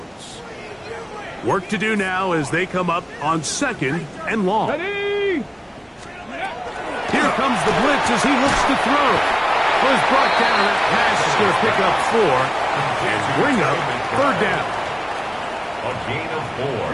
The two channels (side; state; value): both; identical; correlation 1.00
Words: Work to do now as they come up on 2nd and long. Ready? Here comes the blitz as he looks to throw. Was brought down. That pass is going to pick up 4 and bring up 3rd down. A gain of 4.